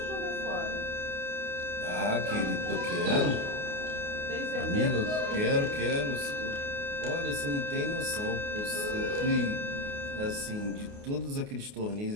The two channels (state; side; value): late; left; 29 ms